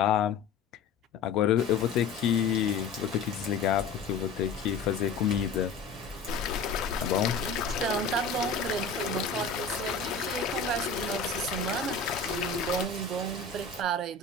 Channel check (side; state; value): right; quieter; 4.5 dB